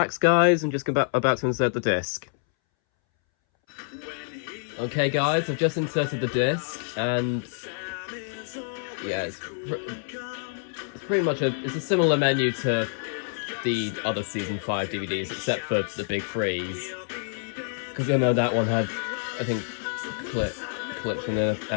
guys, and just about to insert the disc. Okay, guys, I've just inserted the disc, and yeah, it's pretty much it's a similar menu to the other season 5 DVDs, except for the big freeze. Because I know that one had, I think, clips from the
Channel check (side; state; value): right; silent; 60 dB below the other